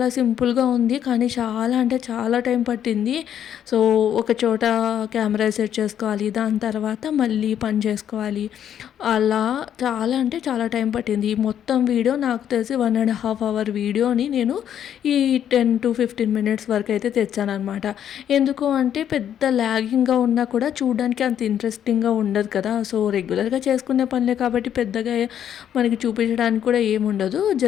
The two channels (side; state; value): right; quieter; 9.7 dB